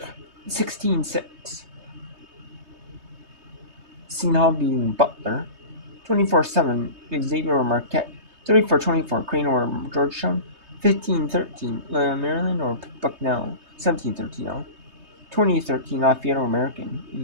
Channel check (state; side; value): late; left; 3.2 ms